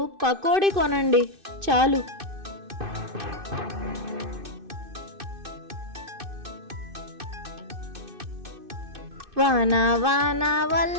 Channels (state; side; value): late; left; 2.6 ms